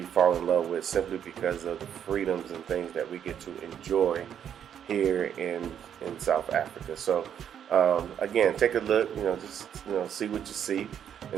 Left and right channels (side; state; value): left; quieter; 9.0 dB